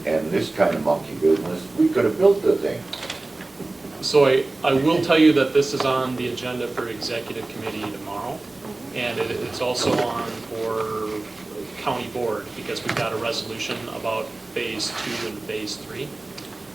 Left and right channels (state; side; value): quieter; left; 3.0 dB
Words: this kind of monkey business, we could have built the thing. so I will tell you that this is on the agenda for executive committee tomorrow. And it's also on for county board, because we've got a resolution about phase 2 and phase 3.